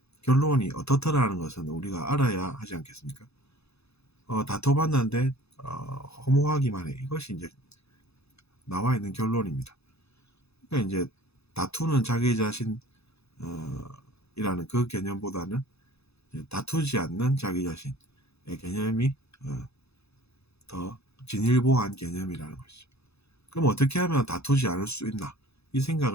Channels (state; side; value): late; right; 0.79 ms